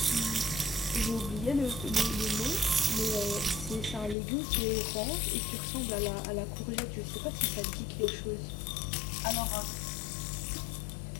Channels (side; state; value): right; drops out; at 4.2 s